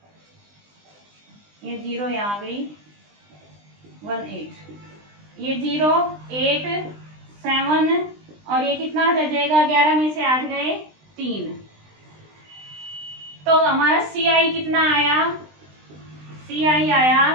ये 0 यहाँ गई, 18, ये 0 8 7, और ये कितना रह जाएगा, 11 में से 8 गए 3। तो हमारा CI कितना आया, CI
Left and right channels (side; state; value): left; late; 20 ms